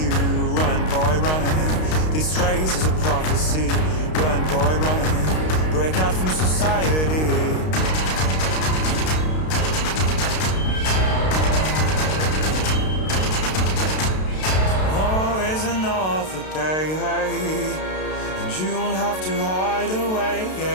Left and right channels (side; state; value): right; late; 32 ms